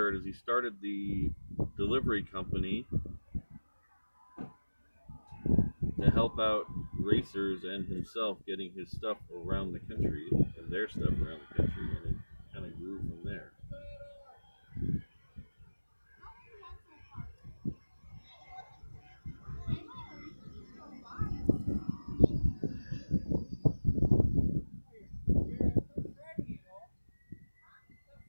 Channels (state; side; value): inverted; both; correlation -1.00